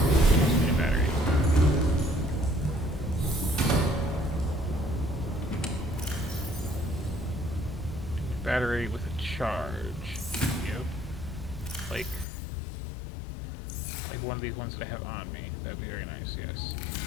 Battery with a charge. Yep. Like one of these ones that I have on me. That'd be very nice, yes.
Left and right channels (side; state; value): right; drops out; at 12.2 s